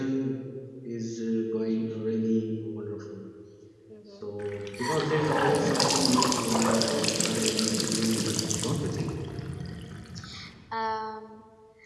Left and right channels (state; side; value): identical; both; correlation 1.00